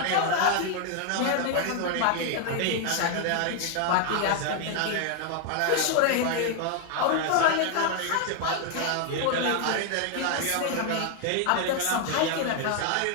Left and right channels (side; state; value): both; different; correlation 0.00